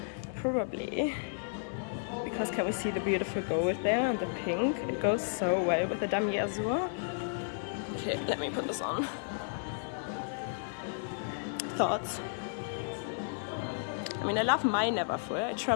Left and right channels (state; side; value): silent; right; 56 dB below the other